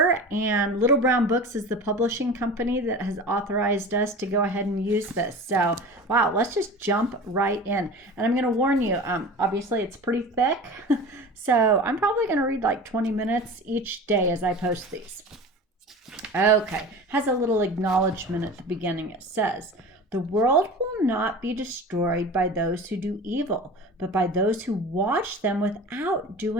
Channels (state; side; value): normal; both; correlation 0.35